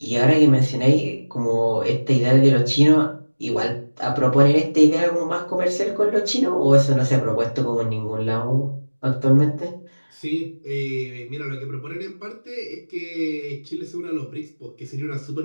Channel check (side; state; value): both; inverted; correlation -1.00